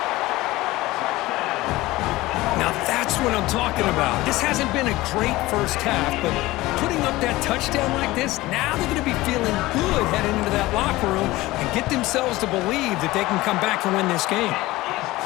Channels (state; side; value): quieter; right; 18.8 dB